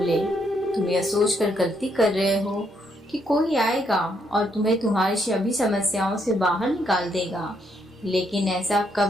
तुम यह सोचकर गलती कर रहे हो कि कोई आएगा और तुम्हें तुम्हारी सभी समस्याओं से बाहर निकाल देगा, लेकिन ऐसा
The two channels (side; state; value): both; normal; correlation 0.74